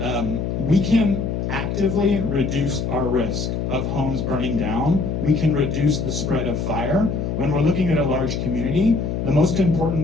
we can actively reduce our risk of homes burning down. We can reduce the spread of fire. When we're looking at a large community, the most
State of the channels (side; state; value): left; noise; hum, 2 dB below the sound